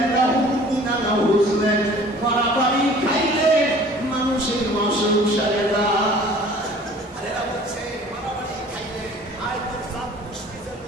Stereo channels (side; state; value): both; normal; correlation 0.49